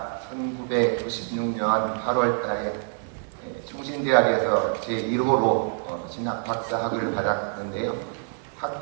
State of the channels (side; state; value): left; silent; 57 dB below the other